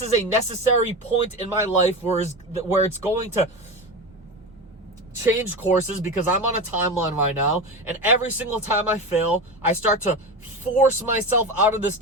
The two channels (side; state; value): both; normal; correlation 0.23